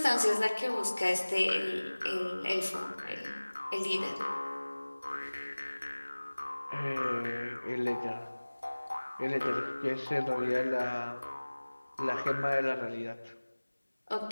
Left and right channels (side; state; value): both; inverted; correlation -1.00